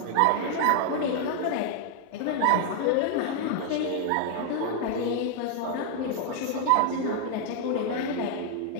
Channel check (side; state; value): both; different; correlation 0.00